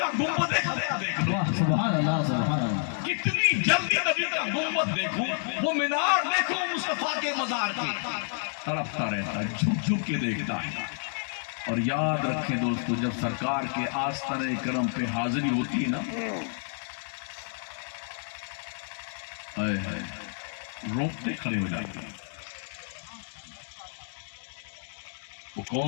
گنبد دیکھ لوں، واہ سبحان اللہ سبحان اللہ۔ کتنی جلدی نبی کا گنبد دیکھوں، وہ مینار دیکھوں مصطفیٰ کے مزار کے، تڑپتا رہتا، جھک جھک کے دیکھتا ہے۔ اور یاد رکھیں دوستو، جب سرکار کے آستانے کرم پہ حاضری ہوتی ہے نا، روکتے کھڑے ہو جاتے ہیں۔ وہ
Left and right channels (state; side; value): silent; right; digital silence